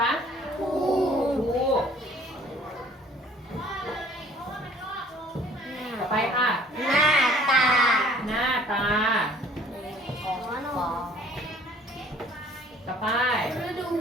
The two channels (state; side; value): normal; both; correlation 0.55